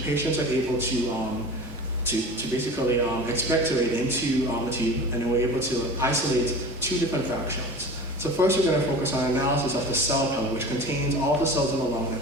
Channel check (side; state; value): both; normal; correlation 0.36